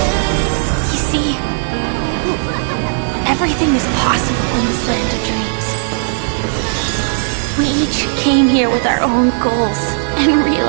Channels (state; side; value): silent; left; 69 dB below the other